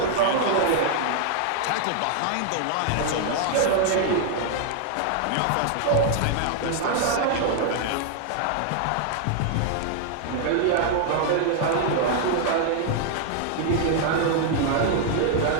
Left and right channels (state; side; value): different; both; correlation 0.00